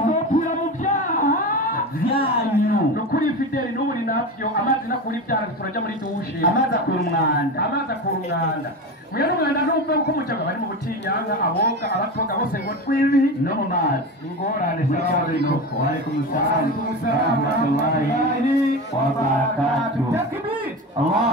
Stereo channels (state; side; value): normal; both; correlation 0.25